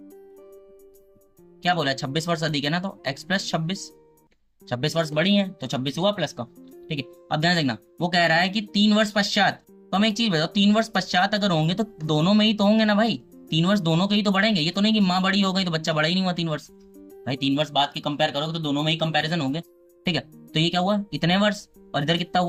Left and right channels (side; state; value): both; identical; correlation 1.00